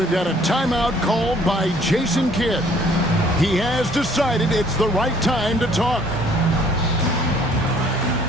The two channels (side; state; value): both; normal; correlation 0.59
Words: got a timeout called by Jason Kidd. He has decided it's the right time to talk.